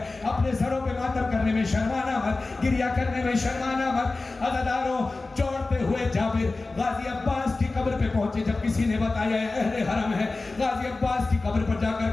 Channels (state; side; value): quieter; right; 3.4 dB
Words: अपने सरों पे मातम करने में शर्माना मत, गिरिया करने में शर्माना मत। अज़ादारों, चौड़ते हुए जाबिर गाजी अब्बास की कब्र पे पहुंचे। जब किसी ने बताया अहले हरम है, गाजी अब्बास की कब्र पर जाकर